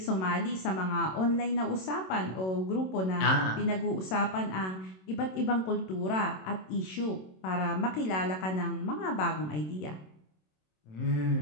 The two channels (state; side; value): late; right; 27 ms